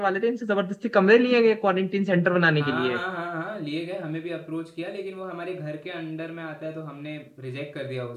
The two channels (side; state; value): both; identical; correlation 1.00